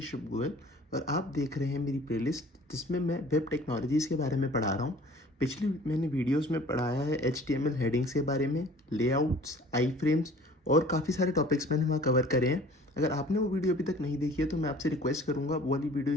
गोयल और आप देख रहे हैं मेरी प्लेलिस्ट जिसमें मैं वेब टेक्नोलॉजीज़ के बारे में पढ़ा रहा हूँ। पिछली मैंने वीडियोस में पढ़ाया है HTML हेडिंग्स के बारे में, लेआउट्स, आई फ्रेम्स और काफ़ी सारे टॉपिक्स मैंने वहाँ कवर करे हैं। अगर आपने वो वीडियो अभी तक नहीं देखी है तो मैं आपसे रिक्वेस्ट करूँगा वो वाली वीडियो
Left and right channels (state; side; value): normal; both; correlation 0.49